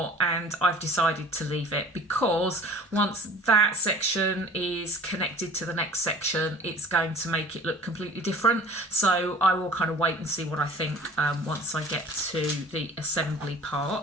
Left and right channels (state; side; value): normal; both; correlation 0.46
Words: And I've decided to leave it, because once that section is connected to the next section, it's going to make it look completely different. So I will kind of wait and see what I think once I get to the assembly